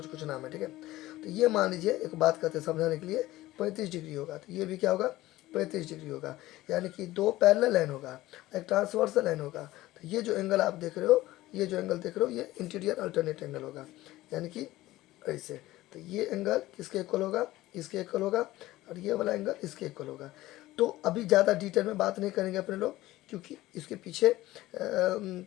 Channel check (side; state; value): right; quieter; 16.9 dB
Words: कुछ नाम है। ठीक है, तो ये मान लीजिए एक बात करते हैं समझाने के लिए, 35 डिग्री होगा, तो ये भी क्या होगा, 35 डिग्री होगा, यानी कि दो पैरेलल लाइन होगा, एक ट्रांसवर्सल लाइन होगा। तो ये जो एंगल आप देख रहे हो, ये जो एंगल देख रहे हो, ये इंटीरियर अल्टरनेट एंगल होगा, यानी कि ऐसे। तो ये एंगल किसके इक्वल होगा, इसके इक्वल होगा, और ये वाला एंगल इसके इक्वल होगा। तो अभी ज़्यादा डिटेल में बात नहीं करेंगे अपने लोग, क्योंकि इसके पीछे